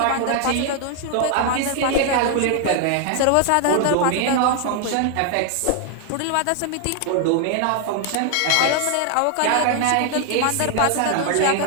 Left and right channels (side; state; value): both; different; correlation 0.00